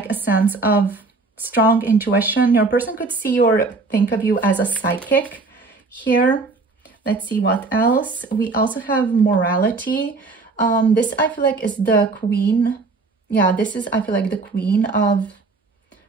a sense of strong intuition. Your person could see or think of you as a psychic here. Let's see what else. We also have morality. This I feel like is the Queen. Yeah, this is, I feel like, the Queen of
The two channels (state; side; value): quieter; left; 3.8 dB